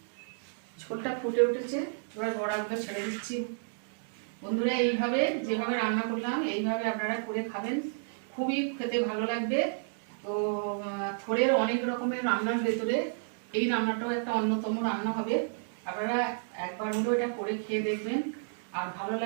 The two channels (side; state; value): left; silent; digital silence